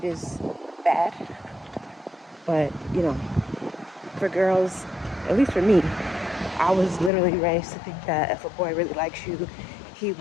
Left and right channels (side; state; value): right; drops out; at 7.1 s